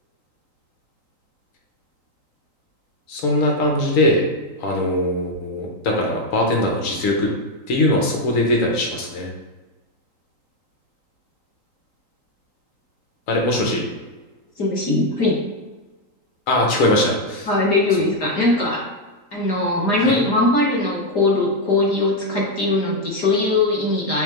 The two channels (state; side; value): late; right; 3.8 ms